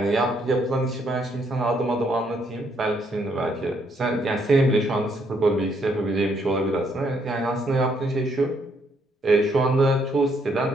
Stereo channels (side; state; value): both; normal; correlation 0.71